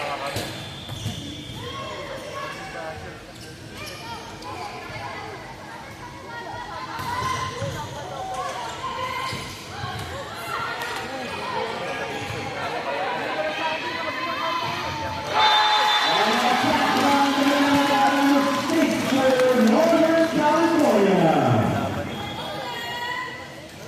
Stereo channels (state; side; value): identical; both; correlation 1.00